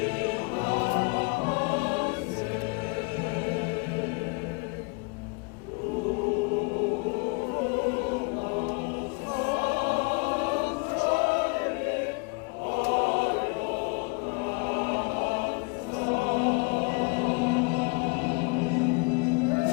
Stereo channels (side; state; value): right; quieter; 30.8 dB